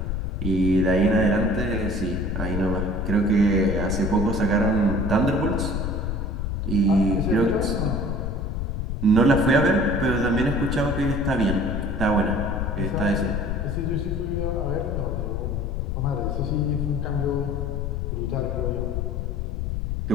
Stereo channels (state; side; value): noise; left; rumble, 2 dB below the sound